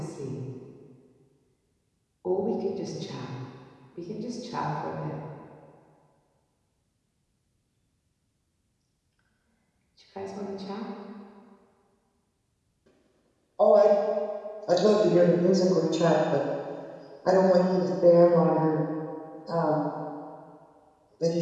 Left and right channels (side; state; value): both; identical; correlation 1.00